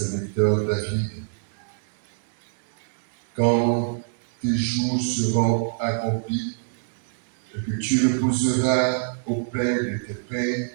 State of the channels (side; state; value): left; silent; 62 dB below the other